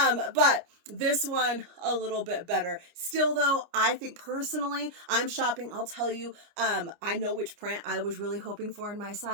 this one a little bit better. Still though, I think personally, I'm shopping. I'll tell you, I know which print I was really hoping for in my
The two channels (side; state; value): left; late; 29 ms